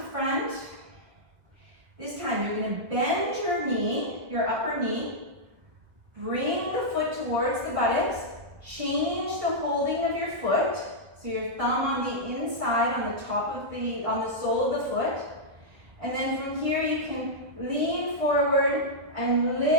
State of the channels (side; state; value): left; late; 1.7 ms